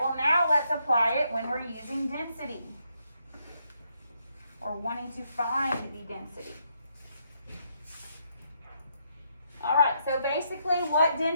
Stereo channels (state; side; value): inverted; both; correlation -0.76